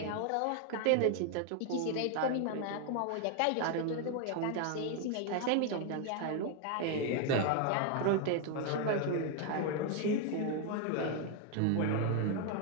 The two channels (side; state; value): both; different; correlation 0.01